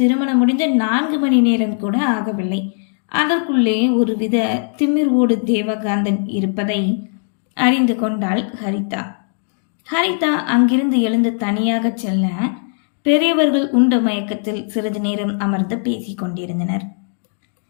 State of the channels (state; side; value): silent; right; digital silence